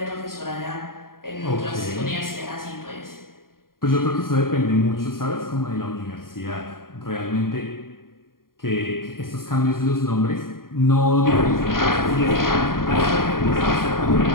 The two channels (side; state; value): right; late; 0.91 ms